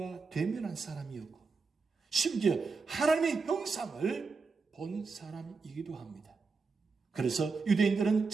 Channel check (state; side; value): quieter; left; 4.6 dB